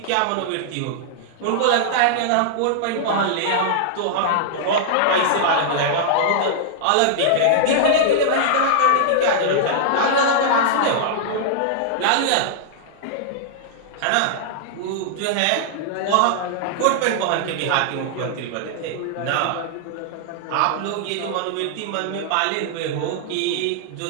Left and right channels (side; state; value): both; different; correlation -0.01